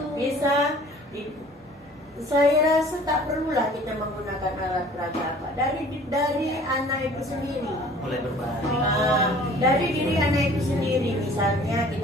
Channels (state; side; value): normal; both; correlation 0.50